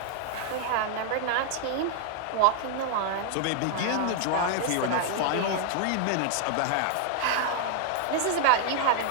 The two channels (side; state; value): both; different; correlation 0.00